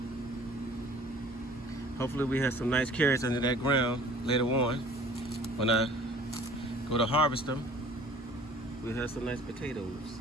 Hopefully we have some nice carrots under that ground later on. When I go to harvest them, we'll have some nice potatoes.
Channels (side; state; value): both; normal; correlation 0.50